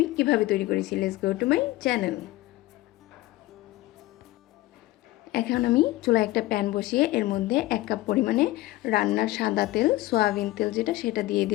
কীভাবে তৈরি করেছি। Let's go to my channel. এখন আমি চুলায় একটা প্যান বসিয়ে এর মধ্যে 1 কাপ পরিমাণে রান্নার সাদা তেল, সয়াবিন তেল যেটা, সেটা দিয়ে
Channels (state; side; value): quieter; right; 17.8 dB